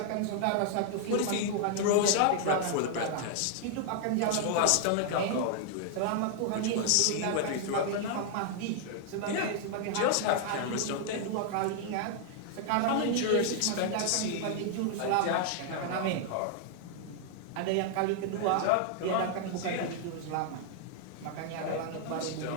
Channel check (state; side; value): different; both; correlation 0.00